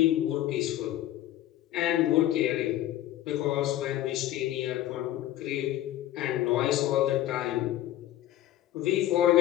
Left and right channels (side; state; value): right; quieter; 13.6 dB